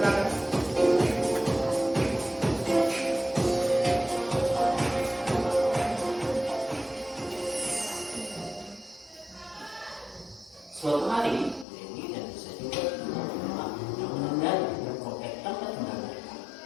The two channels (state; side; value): drops out; right; at 11.7 s